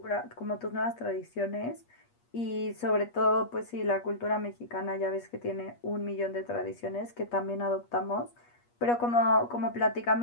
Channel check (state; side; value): late; right; 8.4 ms